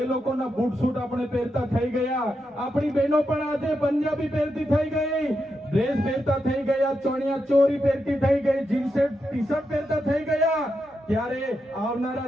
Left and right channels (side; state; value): both; normal; correlation 0.85